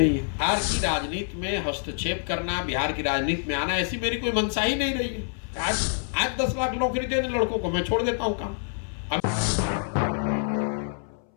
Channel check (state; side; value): silent; right; 61 dB below the other